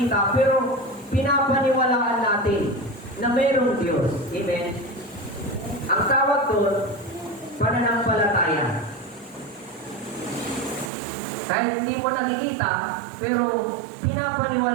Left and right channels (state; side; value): drops out; left; at 10.9 s